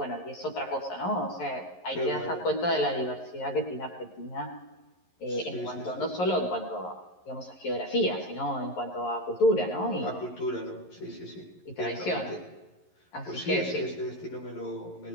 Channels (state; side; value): late; right; 11 ms